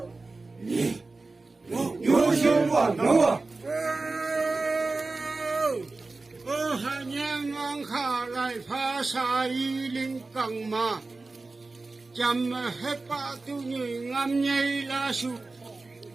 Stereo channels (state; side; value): quieter; left; 3.6 dB